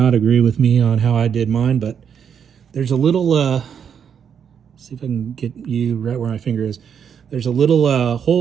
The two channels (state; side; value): quieter; left; 7.7 dB